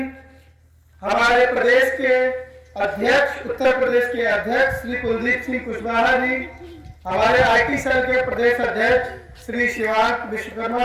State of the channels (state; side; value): identical; both; correlation 1.00